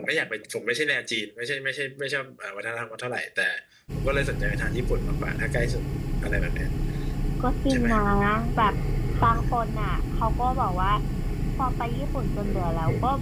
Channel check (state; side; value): identical; both; correlation 1.00